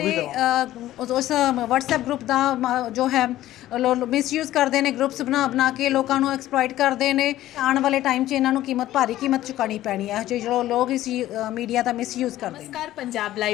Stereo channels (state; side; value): quieter; right; 14.3 dB